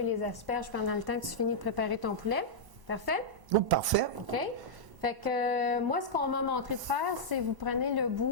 les asperges pendant le temps que tu finis de préparer ton poulet. Parfait? Oh, parfait. OK? Fait que moi, ce qu'on m'a montré de faire, c'est vous prenez le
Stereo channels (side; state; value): left; late; 1.0 ms